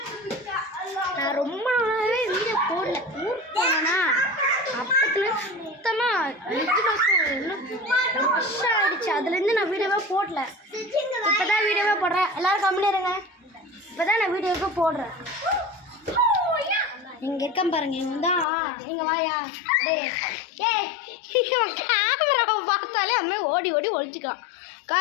நான் ரொம்ப நாளாகவே வீடியோ போடல. ஊருக்கு போனேன்னா அப்பத்துல சுத்தமாக 5 வருஷம் ஆகிடுச்சு. அதுலேருந்து நான் வீடியோவே போடல. இப்போ தான் வீடியோவே போடுறேன். எல்லோரும் கம்மியாக இருங்க. இப்போ தான் நான் வீடியோவே போடுறேன். இங்கே இருக்கேன் பாருங்க. இவன் தான். நீங்கள் வாயா. கேமராவை பார்த்தாலே அம்மே ஓடி ஒழிச்சிக்கலாம்.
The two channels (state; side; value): drops out; right; at 18.4 s